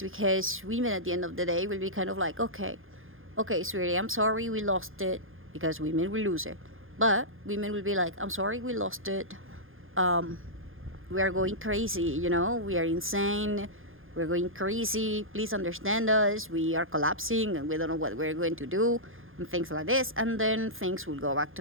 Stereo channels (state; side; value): late; left; 0.59 ms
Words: because women at the end of the day will be kind of like, okay, sweetie, I'm sorry we lost it, because women will lose it. But women will be like, "I'm sorry we lost it. We are going crazy, we are insane. We're going crazy. Please understand us. We are collapsing and we don't know what we're going to do." and things like this, and then things will go back